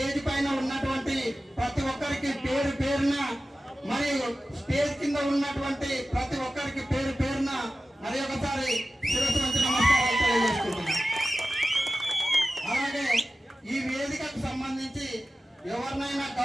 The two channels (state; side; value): normal; both; correlation 0.94